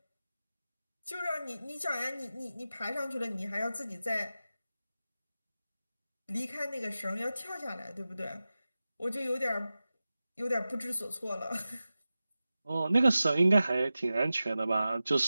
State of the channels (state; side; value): inverted; both; correlation -0.94